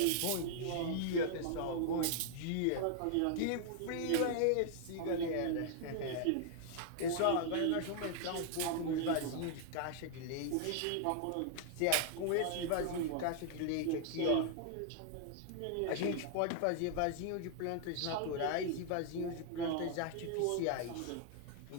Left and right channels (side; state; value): both; different; correlation -0.01